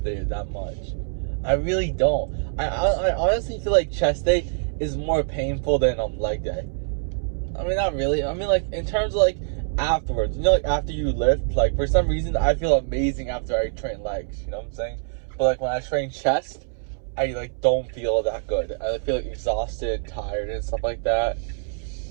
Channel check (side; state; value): left; silent; 62 dB below the other